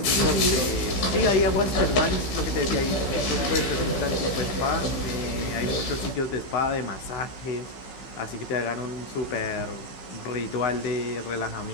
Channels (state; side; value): late; right; 15 ms